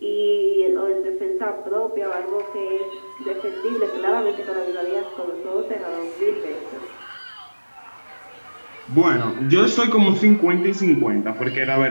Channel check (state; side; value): inverted; both; correlation -1.00